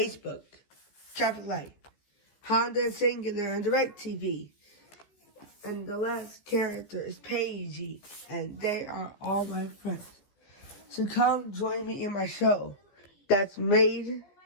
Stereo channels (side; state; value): right; late; 14 ms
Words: Traffic Light, Honda Singular and DirecTV. And the last character is Paige, and they are all my friends. So come join me in my show that's made